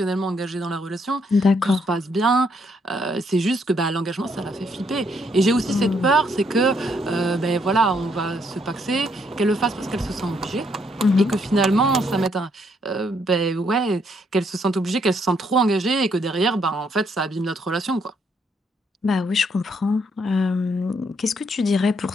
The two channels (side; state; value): both; normal; correlation 0.72